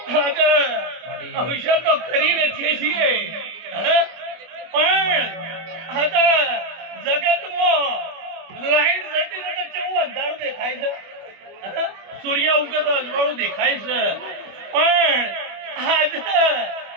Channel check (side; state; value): left; late; 25 ms